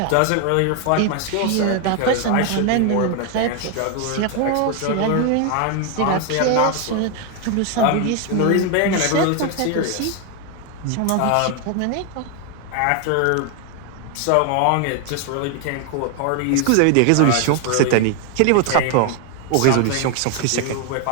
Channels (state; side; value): different; both; correlation 0.01